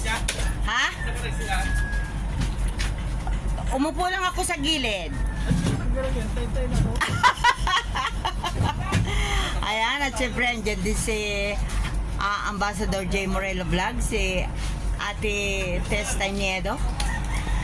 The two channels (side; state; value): both; identical; correlation 1.00